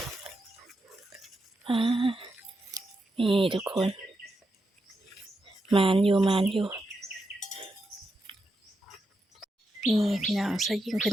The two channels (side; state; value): both; normal; correlation 0.85